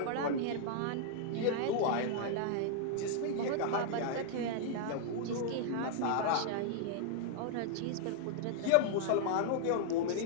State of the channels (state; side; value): different; both; correlation -0.01